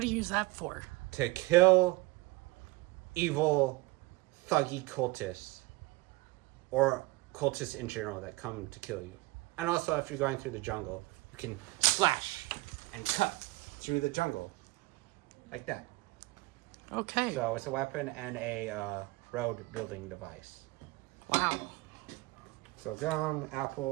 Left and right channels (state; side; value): quieter; left; 22.6 dB